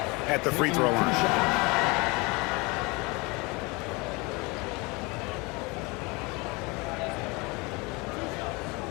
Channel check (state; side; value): quieter; right; 26.6 dB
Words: at the free throw line.